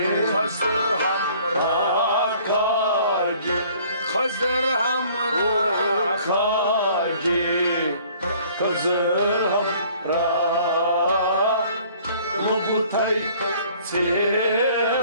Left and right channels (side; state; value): both; inverted; correlation -0.55